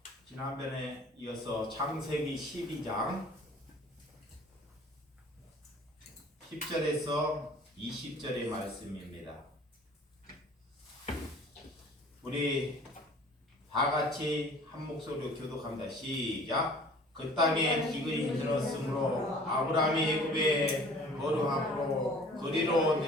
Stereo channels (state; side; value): normal; both; correlation 0.49